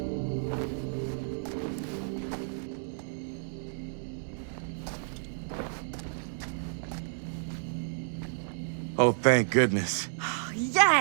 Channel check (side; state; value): left; silent; digital silence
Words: Oh, thank goodness.